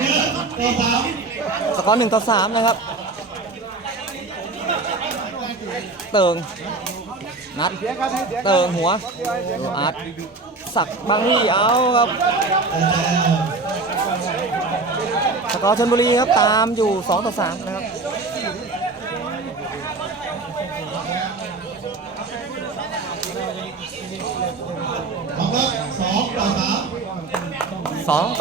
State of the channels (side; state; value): left; quieter; 3.6 dB